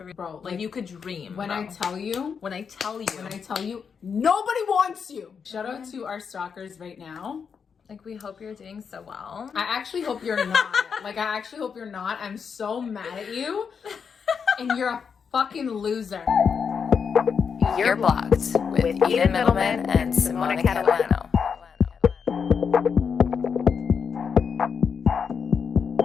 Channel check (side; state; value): right; quieter; 6.4 dB